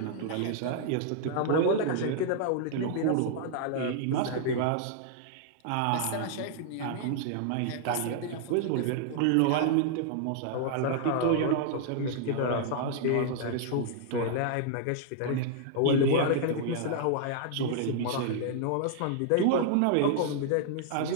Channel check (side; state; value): both; different; correlation -0.01